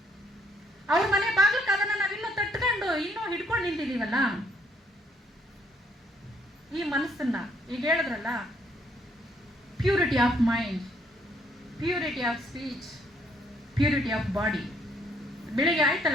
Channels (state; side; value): normal; both; correlation 0.68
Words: ಅವ್ರ ಮನೆ ಬಾಗ್ಲಕ್ಕೆ ಅದನ್ನ ನಾವಿನ್ನೂ ತಟ್ಕೊಂಡು ಇನ್ನೂ ಹಿಡ್ಕೊಂಡು ನಿಂತಿದೀವಲ್ಲ. ಈ ಮನಸ್ಸನ್ನ ಈಗ ಹೇಳಿದ್ರಲ್ಲ, purity of mind, purity of speech, purity of body. ಬೆಳಿಗ್ಗೆ